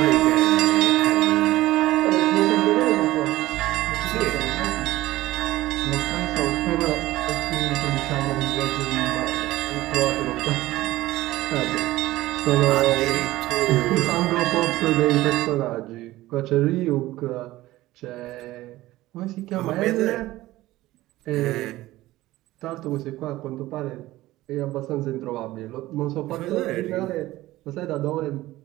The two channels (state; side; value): quieter; left; 17.0 dB